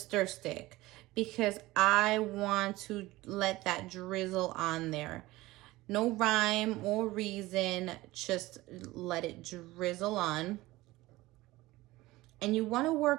stick, because I want to let that drizzle on there. No rhyme or reason, just let it drizzle on. And you wanna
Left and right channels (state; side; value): quieter; left; 18.7 dB